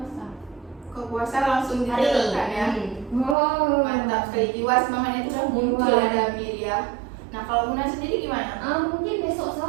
Ke puasa langsung diterapkan ya. Oh, Mantap sekali, jiwa semangatnya itu udah muncul ada Miria. Nah, kalau Muna sendiri gimana? Mungkin besok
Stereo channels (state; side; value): drops out; left; at 3.4 s